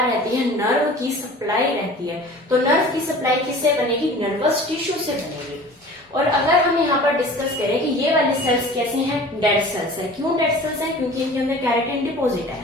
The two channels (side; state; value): both; normal; correlation 0.42